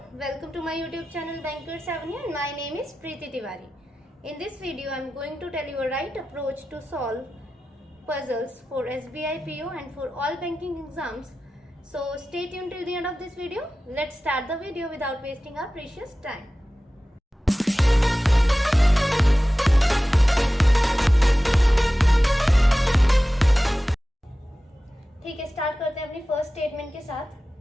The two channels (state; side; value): normal; both; correlation 0.95